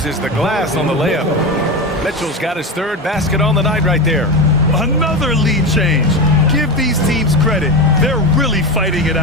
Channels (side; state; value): both; normal; correlation 0.19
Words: the glass on the layup. Mitchell's got his 3rd basket on the night right there. Another lead change. Give these teams credit. They're really fighting it